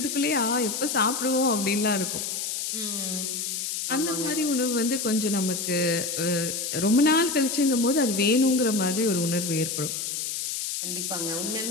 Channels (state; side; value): noise; left; hiss, 3 dB below the sound